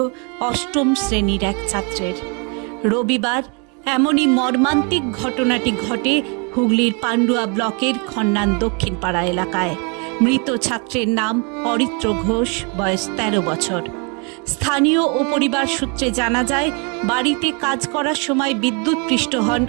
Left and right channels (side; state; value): left; quieter; 34.4 dB